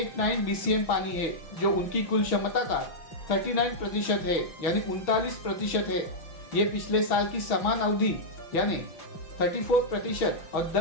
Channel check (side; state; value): right; late; 6.1 ms